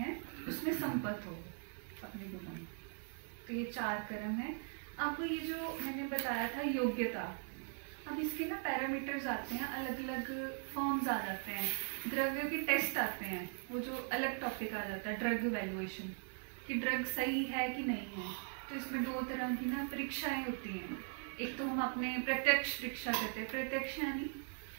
उसमें संपत्ति हो अपने गुणों में। तो ये 4 कर्म है। आपको ये जो मैंने बताया था योग्यता, अब इसके ना पैरामीटर्स आते हैं, अलग अलग फॉर्म्स आ जाते हैं, द्रव्यों के टेस्ट आते हैं, वो जो अलग टॉपिक आ जाता है ड्रग इवैल्यूएशन, कि ड्रग सही है कि नहीं है। तो इसमें 2 तरह की ना परीक्षाएं होती हैं। एक तो हम अपने प्रत्यक्ष परीक्षा करते हैं, प्रत्यक्ष यानी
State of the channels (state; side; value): silent; left; 51 dB below the other